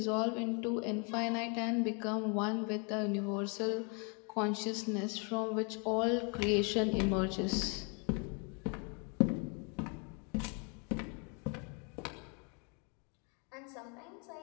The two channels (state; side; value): quieter; right; 35.7 dB